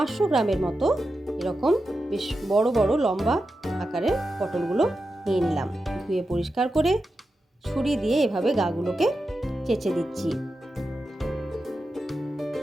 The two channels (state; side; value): normal; both; correlation 0.90